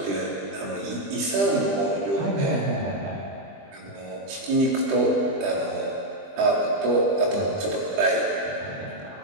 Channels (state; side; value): late; left; 20 ms